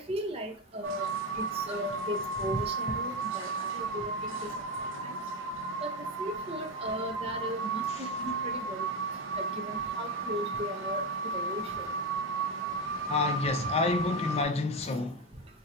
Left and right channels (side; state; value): both; normal; correlation 0.14